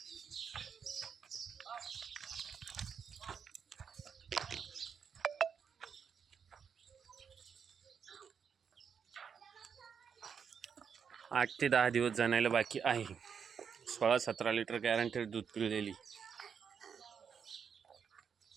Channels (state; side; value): quieter; left; 6.9 dB